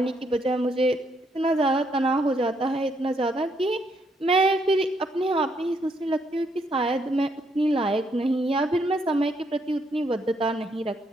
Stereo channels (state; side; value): normal; both; correlation 0.74